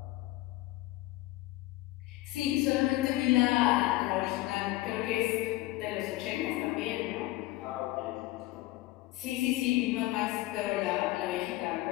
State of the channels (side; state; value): right; quieter; 17.9 dB